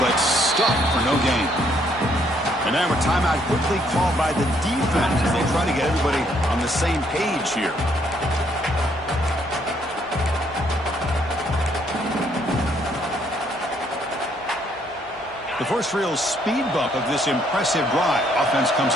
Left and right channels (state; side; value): normal; both; correlation 0.69